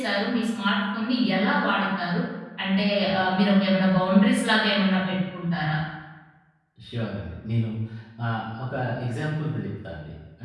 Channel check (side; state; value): both; identical; correlation 1.00